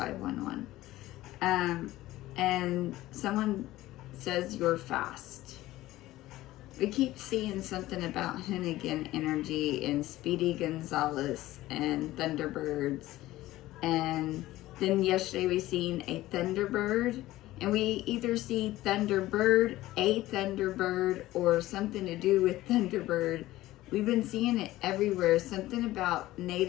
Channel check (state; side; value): quieter; right; 16.4 dB